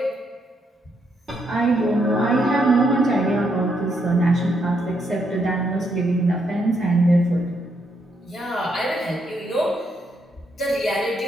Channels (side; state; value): both; normal; correlation 0.76